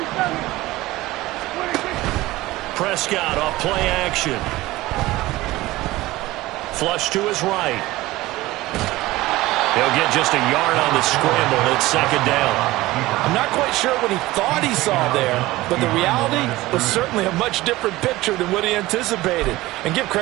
Prescott off play action. Flush to his right. He'll get just a yard on the scramble. It's 2nd down. I'm not quite sure what he thought he saw there, but the reality was certainly a much different picture than what he anticipated. And give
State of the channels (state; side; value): quieter; left; 18.3 dB